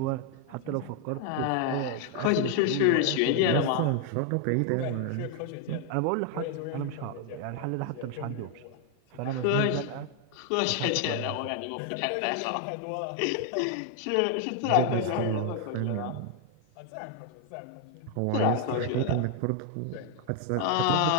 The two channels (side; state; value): both; different; correlation 0.00